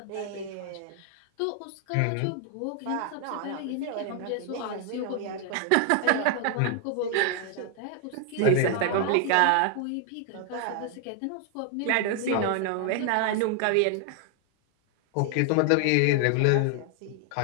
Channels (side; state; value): both; different; correlation 0.00